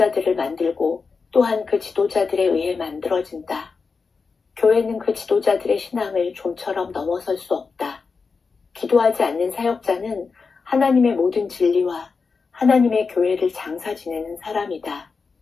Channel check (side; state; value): right; quieter; 4.8 dB